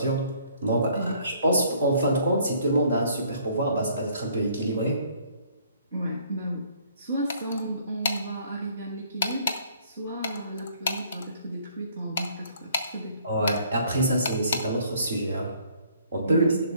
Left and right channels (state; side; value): inverted; both; correlation -0.61